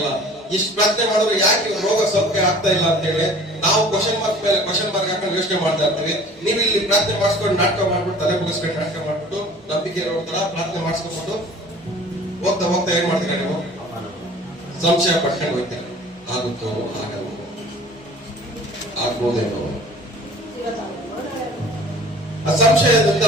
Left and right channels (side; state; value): both; normal; correlation 0.47